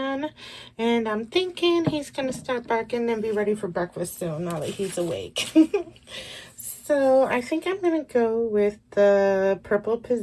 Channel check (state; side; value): identical; both; correlation 1.00